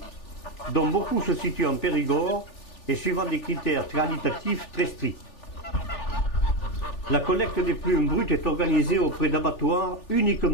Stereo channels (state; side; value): late; right; 3.4 ms